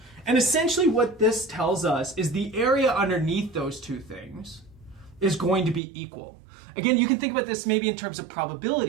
And essentially what this tells us is the area underneath those two things is going to be equal. Again, you can think about this maybe in terms of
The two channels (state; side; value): drops out; left; at 5.8 s